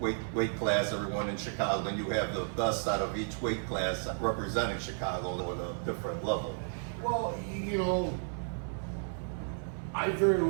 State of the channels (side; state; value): left; silent; digital silence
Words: class, everyone in Chicago, then you have the best out of each weight class representing Chicago at a different level. Well, you know, I very